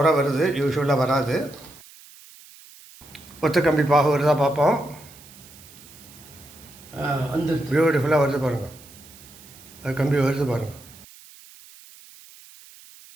வருது, யூஸ்வலாக வராது. ஒத்த கம்பி பாகு வருதா பார்ப்போம். வந்து பியூட்டிஃபுல்லாக வருது பாருங்கள். அது கம்பி வருது பாருங்கள்.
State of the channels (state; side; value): noise; right; hiss, 21 dB below the sound